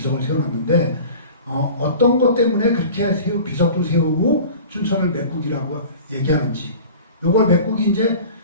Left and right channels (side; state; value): both; inverted; correlation -0.40